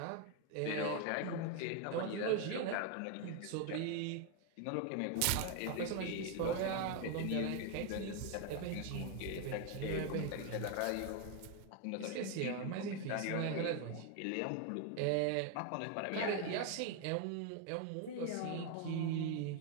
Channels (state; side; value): different; both; correlation 0.01